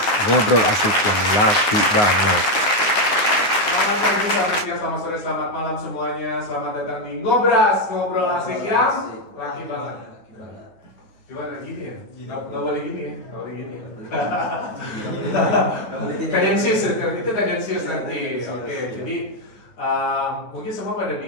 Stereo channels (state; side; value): late; right; 9.6 ms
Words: ngobrol asik yang laki banget. Selamat pagi, selamat siang, selamat sore, selamat malam semuanya. Selamat datang di Ngobras, ngobrol asik yang laki banget. Gimana gini ya? Nggak boleh gini ya? Nggak boleh gini. Tendensius, itu tendensius nanti. Oke, jadi mungkin semua pada